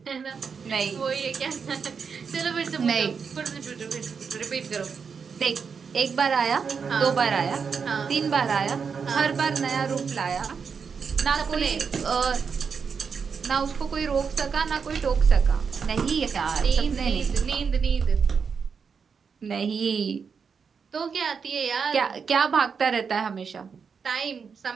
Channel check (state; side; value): quieter; left; 6.0 dB